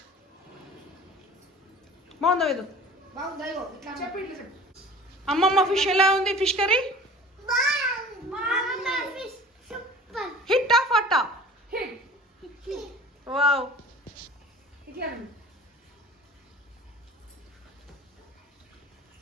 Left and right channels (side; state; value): both; normal; correlation 0.43